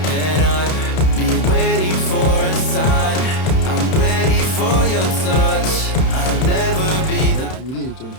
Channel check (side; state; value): right; late; 31 ms